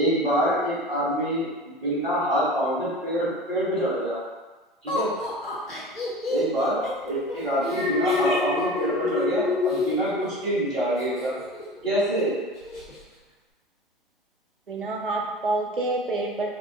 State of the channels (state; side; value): normal; both; correlation 0.35